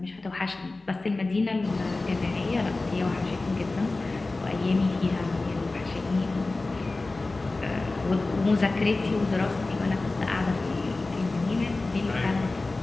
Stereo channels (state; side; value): quieter; right; 3.3 dB